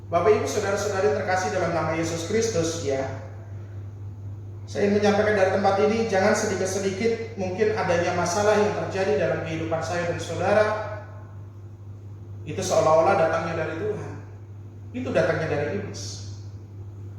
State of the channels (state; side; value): identical; both; correlation 1.00